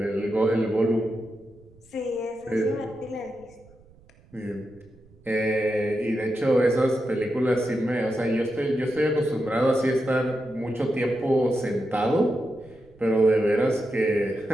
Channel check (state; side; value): noise; right; rumble, 27 dB below the sound